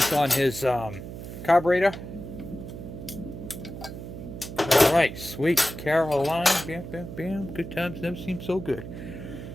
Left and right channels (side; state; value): right; noise; hum, 10 dB below the sound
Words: on his carburetor. Alright, sweet. Caroline. Bam, bam, bam. Good times never seem so good.